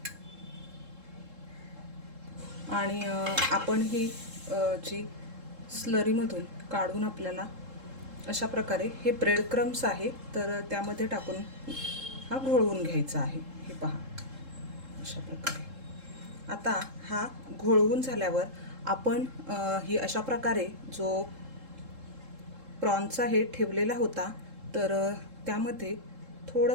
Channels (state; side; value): late; left; 3.7 ms